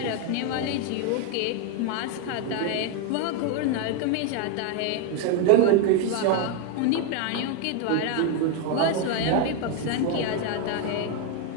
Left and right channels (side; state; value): both; different; correlation 0.02